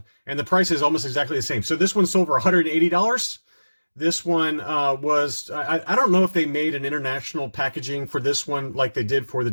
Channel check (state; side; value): inverted; both; correlation -1.00